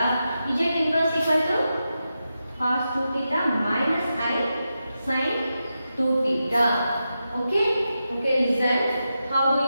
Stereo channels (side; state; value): both; inverted; correlation -0.89